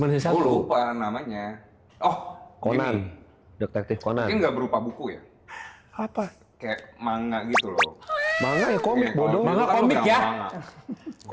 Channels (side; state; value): both; identical; correlation 1.00